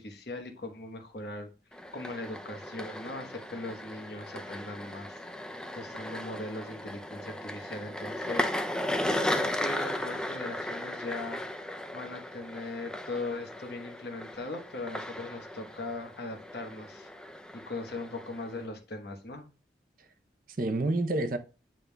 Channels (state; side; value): normal; both; correlation 0.66